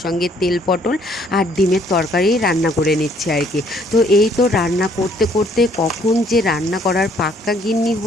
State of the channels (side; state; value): both; normal; correlation 0.64